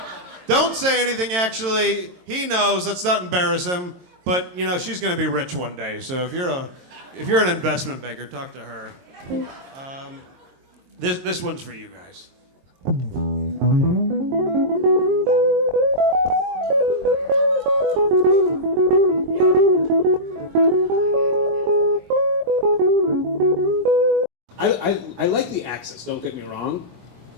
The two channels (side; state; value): left; late; 22 ms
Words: Don't say anything, actually. He knows. Let's not embarrass him. But, she's going to be rich one day. So if you're an investment banker, talk to her. This one's for you guys. I like the access, don't get me wrong.